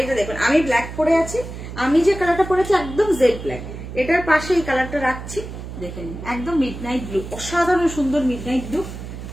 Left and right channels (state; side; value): noise; right; hum, 10 dB below the sound